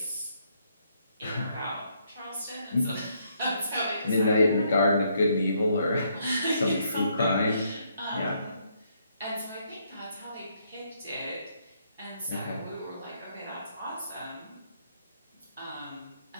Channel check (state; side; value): inverted; both; correlation -0.72